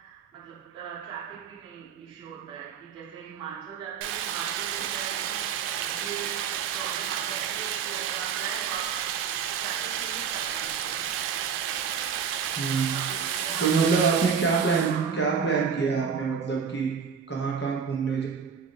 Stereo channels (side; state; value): left; quieter; 6.5 dB